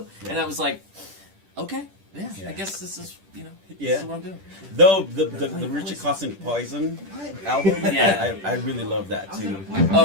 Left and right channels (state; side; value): late; left; 10 ms